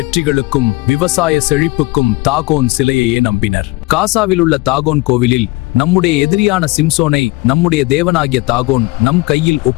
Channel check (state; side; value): quieter; right; 23.0 dB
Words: விவசாய செழிப்புக்கும் தாகோன் சிலையையே நம்பினர். காசாவில் உள்ள தாகோன் கோவிலில் நம்முடைய எதிரியான சிம்சோனை நம்முடைய தேவனாகிய தாகோன் நம் கையில்